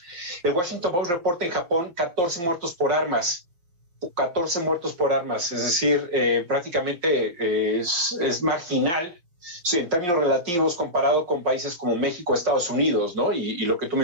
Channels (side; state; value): left; late; 5.7 ms